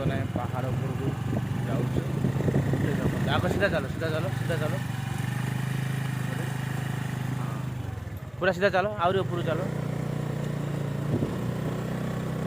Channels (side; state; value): left; noise; hum, 29 dB below the sound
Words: ଆମେ ପାହାଡ଼ ଉପରକୁ ଯାଉଛୁ। ଆଗ ସିଧା ଚାଲ ସିଧା ଚାଲ ସିଧା ଚାଲ ପୁରା ସିଧା ଚାଲ ଆହୁରି ଉପରକୁ ଚାଲ।